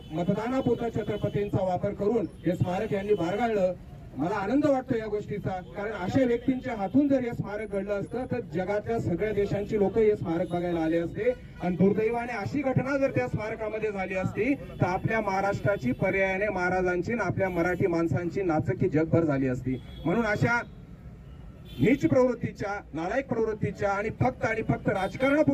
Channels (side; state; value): both; identical; correlation 1.00